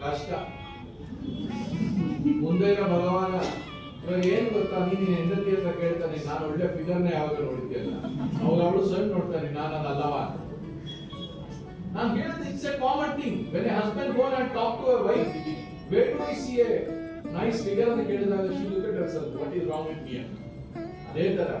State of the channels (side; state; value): both; identical; correlation 1.00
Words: ಕಷ್ಟ. ಮುಂದೆ ಭಗವಾನ ಇವಾಗ ಏನ್ ಗೊತ್ತಾ, ನೀನ್ ಹೆಂಡತಿ ಅಂತ ಕೇಳ್ತಾನೆ, ನಾನು ಒಳ್ಳೆ ಫಿಗರ್ನ ಯಾವಾಗ ನೋಡಿದ್ಯಲ್ಲ, ಅವಾಗ ಅವಳು ಸಣ್ಣ ನೋಡ್ತಾನೆ, ನಾನು ಅಲ್ಲವಾ. ನಾನು ಹೇಳಿದ it's a common thing. When a husband go and talk to a wife, where do I see a nice figure ಅಂತ ಕೇಳಿದಾಗ she look at herself, what is wrong with me ಅಂತ. ಅದೇ ತರ